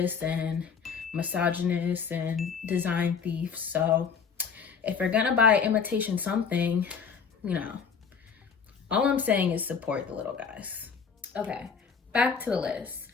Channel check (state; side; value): quieter; right; 6.1 dB